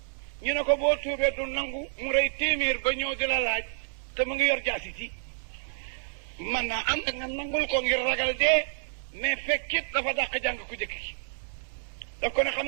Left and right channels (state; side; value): silent; left; digital silence